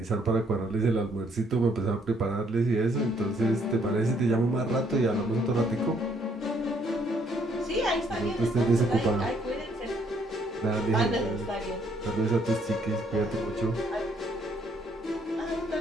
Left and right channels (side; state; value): both; normal; correlation 0.68